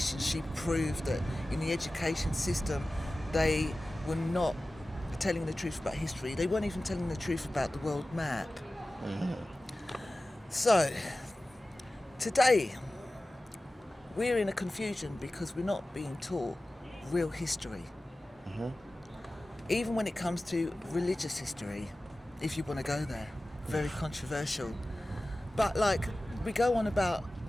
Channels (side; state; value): both; normal; correlation 0.96